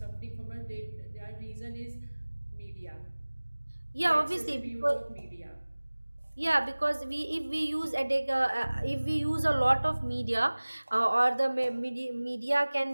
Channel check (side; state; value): both; inverted; correlation -1.00